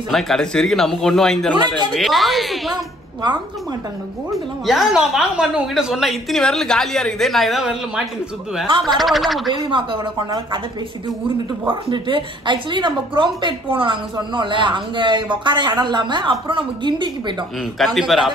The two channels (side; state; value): both; normal; correlation 0.60